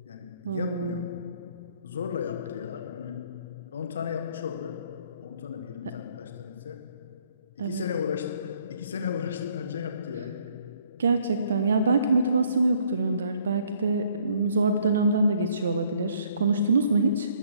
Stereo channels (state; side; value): inverted; both; correlation -0.63